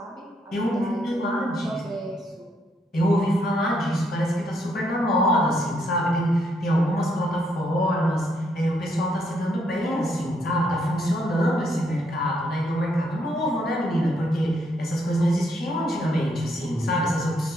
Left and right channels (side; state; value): both; normal; correlation 0.74